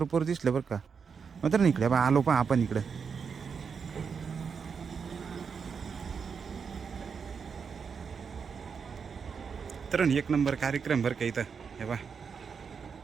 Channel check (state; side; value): quieter; left; 6.1 dB